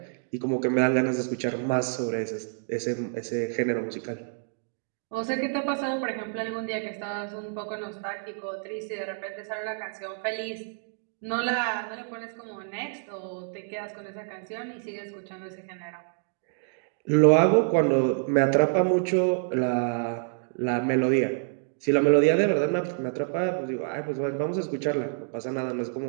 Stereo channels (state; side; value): silent; left; digital silence